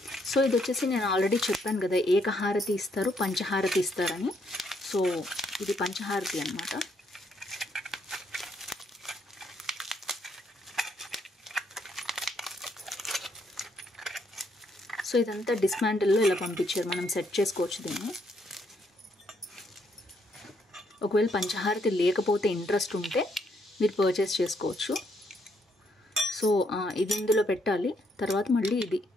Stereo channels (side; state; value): both; normal; correlation 0.73